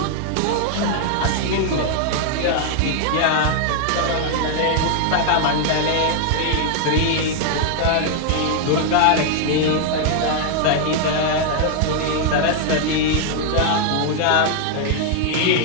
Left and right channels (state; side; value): different; both; correlation 0.00